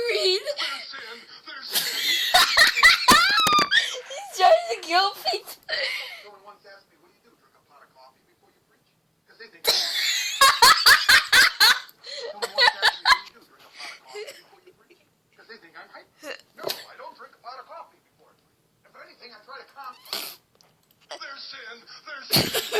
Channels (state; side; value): identical; both; correlation 1.00